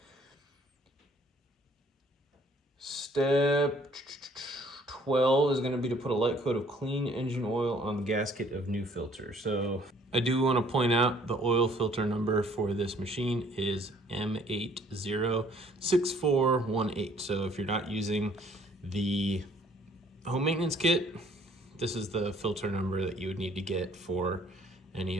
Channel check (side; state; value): both; normal; correlation 0.60